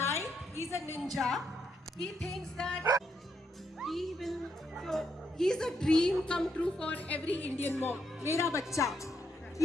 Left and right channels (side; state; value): both; normal; correlation 0.77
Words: he's a ninja. He thinks that he will. So he's a dream come true for every Indian mom. Mera bacha.